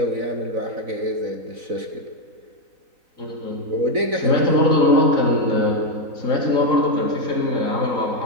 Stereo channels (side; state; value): left; late; 4.0 ms